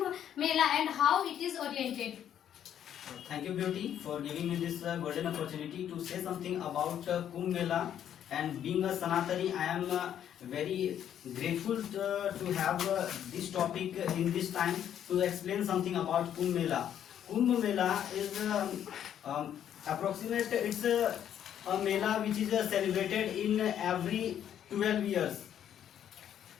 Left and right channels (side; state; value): right; quieter; 10.0 dB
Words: Mela and how it is oriented. Thank you, Beauty, for giving me this golden opportunity to say something about Kumbh Mela. And being a Sanatani, I am very grateful to have this topic in this time to explain something about Kumbh Mela. Kumbh Mela is approximate. It's a Mela which is celebrated in every 12 years.